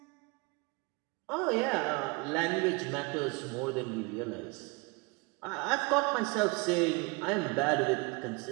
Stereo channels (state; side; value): quieter; left; 28.2 dB